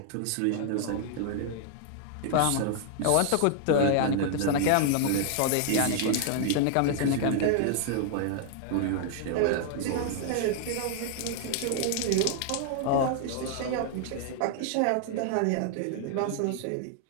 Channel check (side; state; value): both; different; correlation 0.00